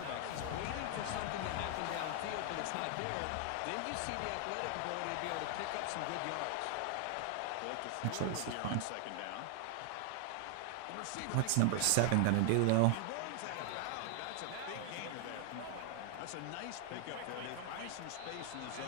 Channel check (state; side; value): different; both; correlation 0.00